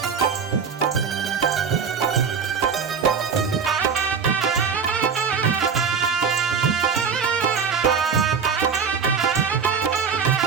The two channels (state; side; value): quieter; left; 6.2 dB